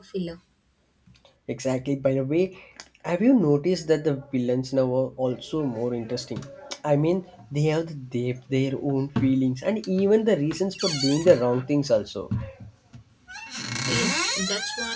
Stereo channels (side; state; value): both; identical; correlation 1.00